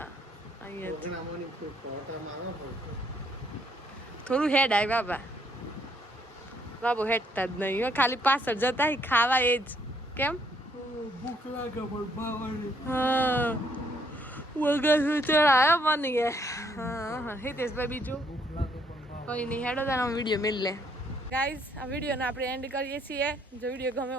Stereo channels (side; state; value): both; normal; correlation 0.69